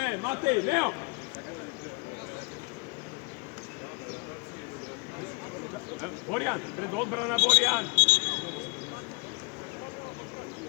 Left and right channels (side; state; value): right; quieter; 31.9 dB